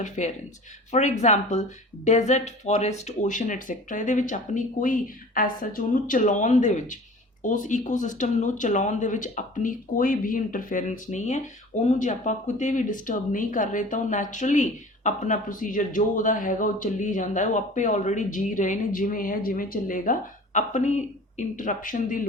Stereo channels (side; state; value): both; normal; correlation 0.42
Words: For example, desert, forest, ocean, etc. ਇਹਦੇ ਵਿੱਚ ਆਪਣੀ ਕੋਈ ਐਸਾ ਉਹਨੂੰ ਚਲਾਉਣ ਦੇ ਵਿੱਚ, ਉਸ ਈਕੋਸਿਸਟਮ ਨੂੰ ਚਲਾਉਣ ਦੇ ਵਿੱਚ ਆਪਣੀ ਕੋਈ ਵੀ ਇੰਟਰਫੇਰੈਂਸ ਨਹੀਂ ਹੈ। ਉਹਨੂੰ ਜੇ ਆਪਾਂ ਕਿਤੇ ਵੀ ਡਿਸਟਰਬ ਨਹੀਂ ਕਰ ਰਹੇ ਤਾਂ ਉਹ ਨੈਚੁਰਲੀ अपना प्रोसीजर जो ਉਹਦਾ ਹੈਗਾ ਉਹ ਚੱਲੀ ਜਾਂਦਾ ਹੈ, ਉਹ ਆਪੇ ਆਲਰੇਡੀ ਜੀ ਰਹੇ ਨੇ, ਜਿਵੇਂ ਹੈ ਜਿਵੇਂ ਚੱਲੇਗਾ, ਆਪਣੀ ਇੰਟਰਪਸ਼ਨ ਦੀ